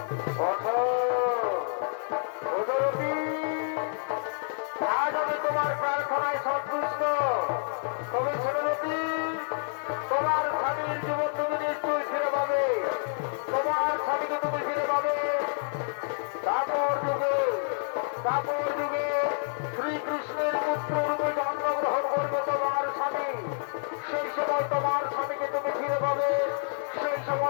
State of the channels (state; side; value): silent; right; 59 dB below the other